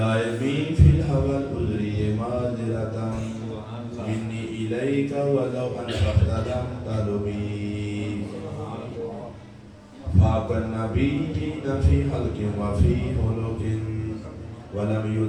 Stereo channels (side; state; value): both; identical; correlation 1.00